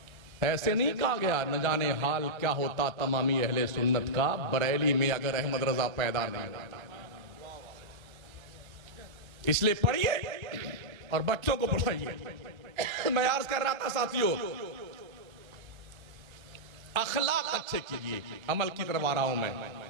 ऐसे नहीं कहा गया न जाने हाल क्या होता तमामी अहले सुन्नत का, बरेली में अगर अहमद रजा पैदा नहीं होता। इसलिए पढ़िए और बच्चों को पढ़ाइए। मैं अर्ज कर रहा था साथियों, अखलाक अच्छे कीजिए। अमल की तरफ आ रहा हूं मैं,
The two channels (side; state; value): left; late; 1.3 ms